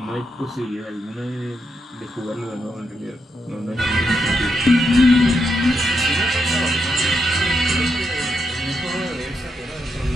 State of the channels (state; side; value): normal; both; correlation 0.82